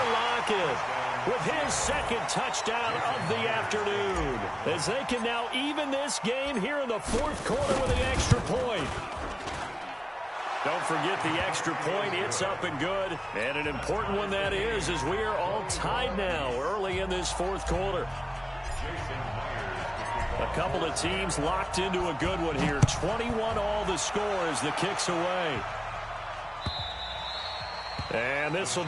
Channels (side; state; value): both; identical; correlation 1.00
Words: Lockett with his 2nd touchdown of the afternoon, as they can now even this game here in the 4th quarter with an extra point. Don't forget the extra point. It's up and good, and an important one that is, as we are all tied now early in this 4th quarter. A couple of teams locked into a good one here. 21 all the score as the kick's away. And this will